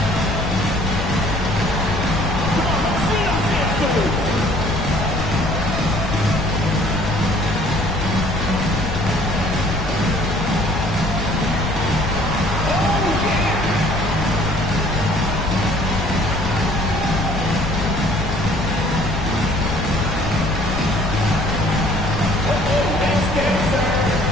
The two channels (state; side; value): noise; left; rumble, 6 dB below the sound